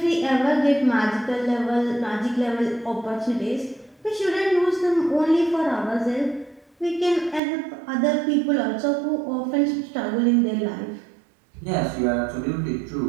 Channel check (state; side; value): drops out; left; at 7.4 s